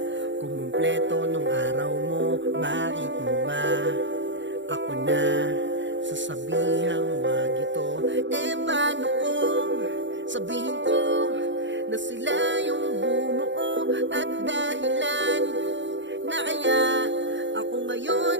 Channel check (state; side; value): late; left; 0.54 ms